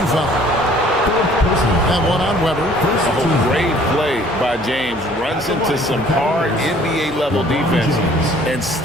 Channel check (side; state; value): both; normal; correlation 0.55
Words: foul. And one on Weber. Oh, great play by James. Runs into some hard NBA-level defense and